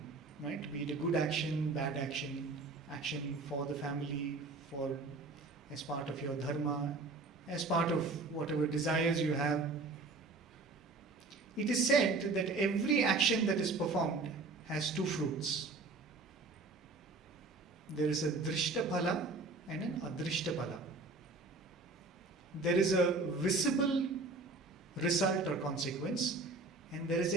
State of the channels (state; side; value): quieter; left; 3.6 dB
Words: right? Be it a good action, bad action, action for the family, as part of your dharma, as part of whatever desires you have. It is said that every action that is performed has 2 fruits. There is a drishta phala and an adrishta phala. There is a visible result or consequence, and there is